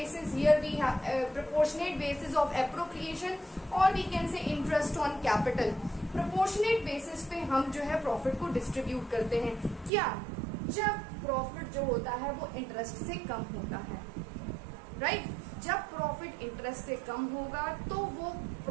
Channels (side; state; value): left; drops out; at 9.9 s